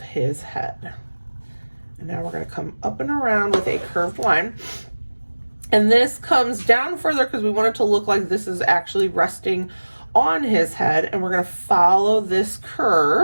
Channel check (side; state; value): both; inverted; correlation -1.00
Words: his head. And now we're going to come up and around with a curved line, and this comes down further because we want it to look like this is actually resting on his head, and we're going to follow this